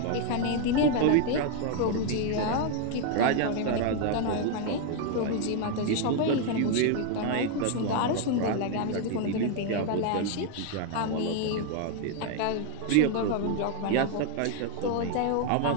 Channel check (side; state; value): both; different; correlation 0.00